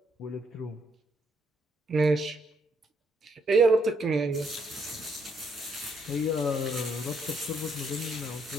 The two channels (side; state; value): both; normal; correlation 0.72